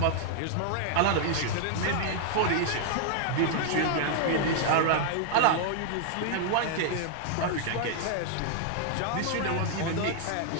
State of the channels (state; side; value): different; both; correlation 0.00